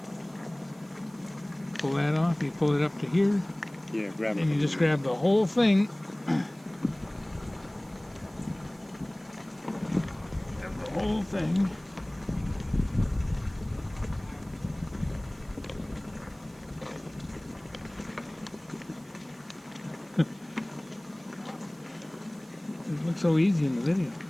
Pull that off, you pull it up to here. Yeah, grab it. And you just grab the whole thing. Grab the whole thing. It looks so easy in the video.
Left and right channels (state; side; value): noise; right; hiss, 28 dB below the sound